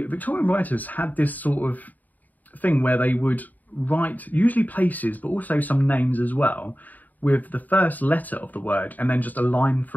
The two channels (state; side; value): late; right; 0.081 ms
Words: Victorian writers had this sort of thing where they would write usually places, but also some names as well, with the first letter of the word and then just a line